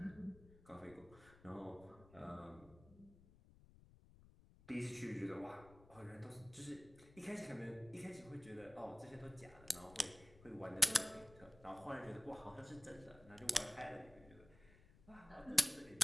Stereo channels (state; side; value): noise; left; rumble, 22 dB below the sound